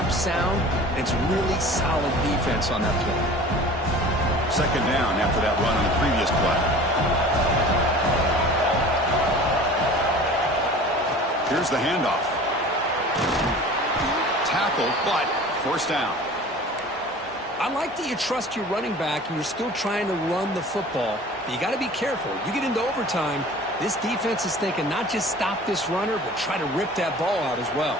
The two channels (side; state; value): both; normal; correlation 0.42